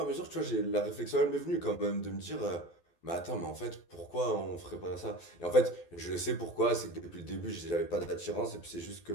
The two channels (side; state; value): right; late; 12 ms